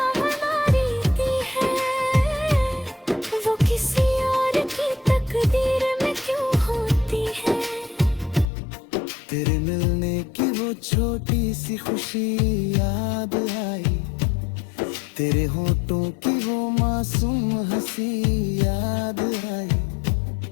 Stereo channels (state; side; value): drops out; right; at 8.5 s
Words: हमारी है, वो किसी और की तकदीर में क्यों होती है। तेरे मिलने की वो छोटी सी खुशी याद आई, तेरे होठों की वो मासूम हंसी याद आई।